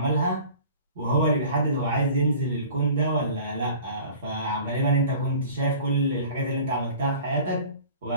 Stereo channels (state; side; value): inverted; both; correlation -0.44